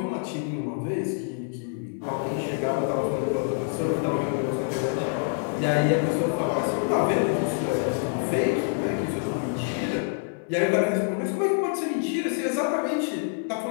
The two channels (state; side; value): silent; right; digital silence